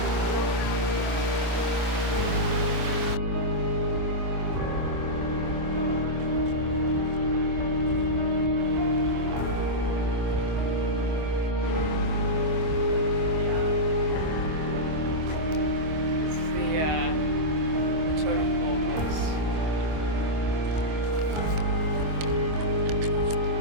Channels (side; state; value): left; late; 25 ms